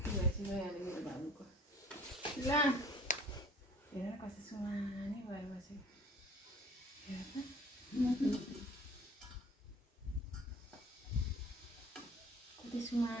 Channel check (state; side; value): normal; both; correlation 0.51